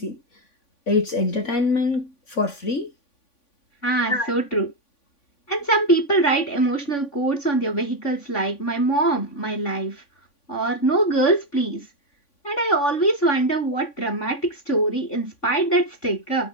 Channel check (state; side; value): late; right; 3.5 ms